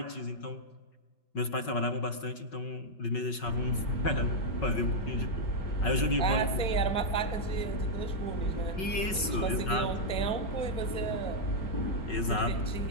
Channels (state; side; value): late; right; 5.4 ms